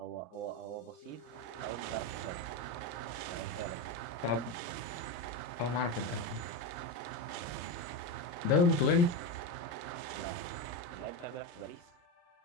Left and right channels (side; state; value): right; late; 33 ms